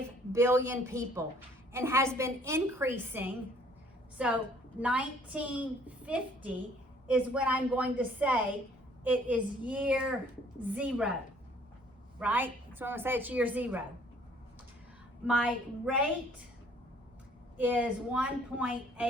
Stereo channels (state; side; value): normal; both; correlation 0.59